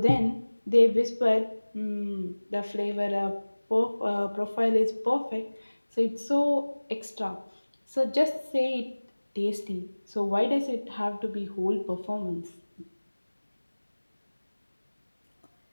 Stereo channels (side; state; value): both; inverted; correlation -1.00